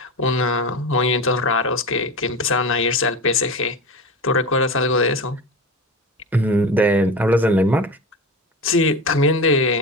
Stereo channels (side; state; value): both; normal; correlation 0.27